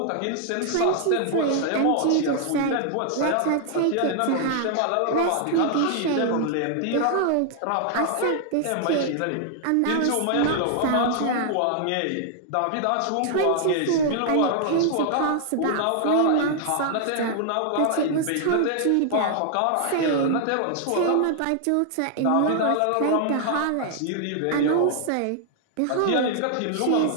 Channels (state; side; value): different; both; correlation 0.00